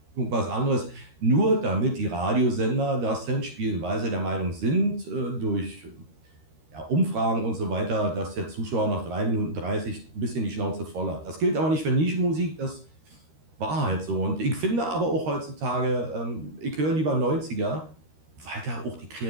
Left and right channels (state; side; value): late; left; 13 ms